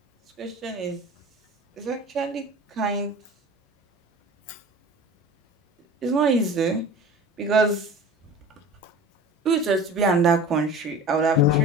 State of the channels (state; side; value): normal; both; correlation 0.38